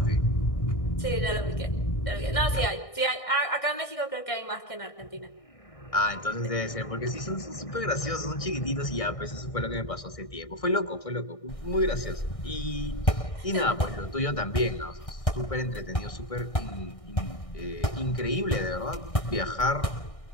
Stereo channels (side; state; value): right; late; 1.6 ms